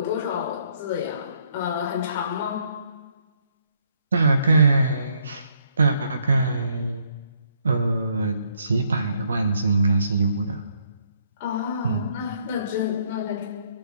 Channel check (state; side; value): inverted; both; correlation -0.69